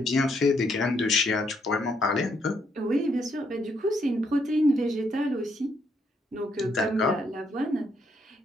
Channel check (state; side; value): normal; both; correlation 0.74